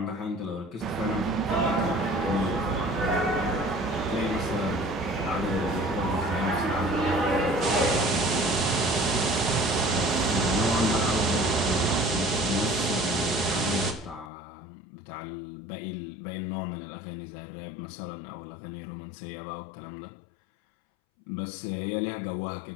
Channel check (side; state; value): right; drops out; at 14.3 s